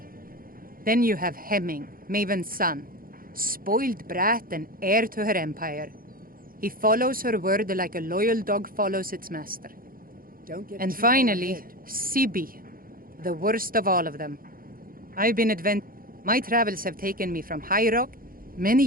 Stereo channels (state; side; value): late; left; 0.42 ms